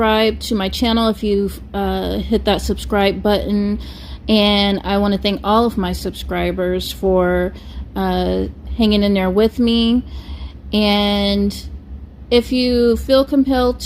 to my channel if you've hit that subscribe button, and I want to thank all of my subscribers for hanging in there with me. And if you feel compelled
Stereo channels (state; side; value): identical; both; correlation 1.00